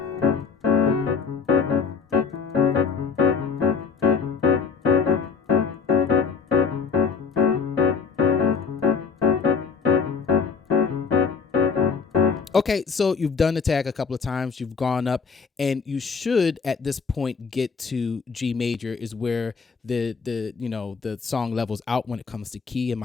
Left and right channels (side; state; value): right; quieter; 5.6 dB